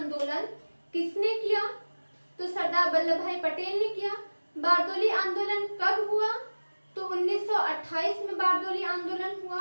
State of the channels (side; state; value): both; inverted; correlation -1.00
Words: किसने किया, तो सरदार वल्लभ भाई पटेल ने किया। बारदोली आंदोलन कब हुआ, तो 1928 में बारदोली आंदोलन हुआ।